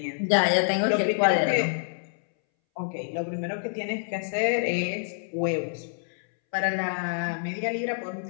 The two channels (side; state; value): right; silent; 60 dB below the other